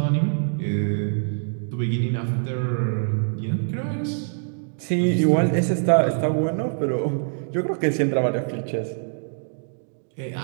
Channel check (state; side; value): silent; left; digital silence